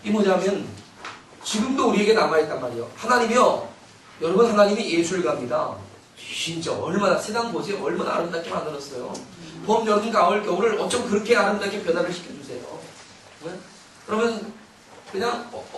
이 뭐냐면 지금도 우리에게 남아있단 말이에요. 하나님이요. 여러분 하나님이 예술가입니다. 진짜 얼마나 세상 보세요. 얼마나 아름답게 만들었어요. 봄, 여름, 가을, 겨울을 어쩜 그렇게 아름답게 변화를 시켜주세요. 네? 그러면 그냥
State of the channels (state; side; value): identical; both; correlation 1.00